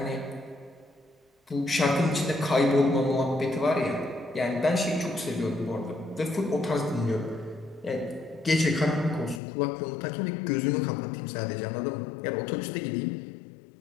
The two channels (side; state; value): right; drops out; at 9.4 s